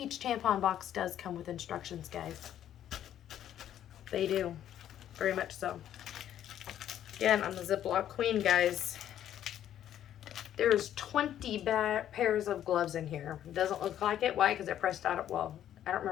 tampon box does come with instructions, guys. They do. Very much so. Again, I'm the Ziploc queen, guys. There's 20 pairs of gloves in here. It doesn't look like it. Why? Because I pressed out, well, I don't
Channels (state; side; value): quieter; right; 11.0 dB